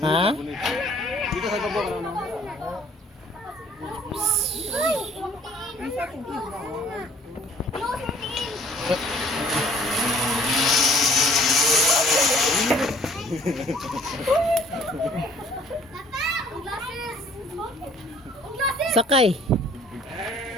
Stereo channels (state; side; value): normal; both; correlation 0.56